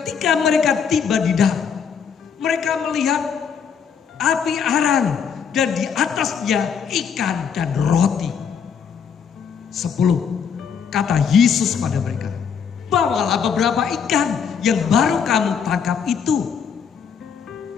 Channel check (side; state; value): right; quieter; 7.0 dB